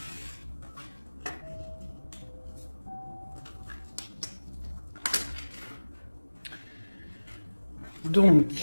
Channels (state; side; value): inverted; both; correlation -1.00